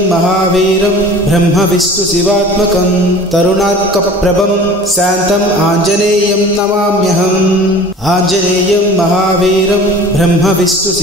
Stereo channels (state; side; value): normal; both; correlation 0.43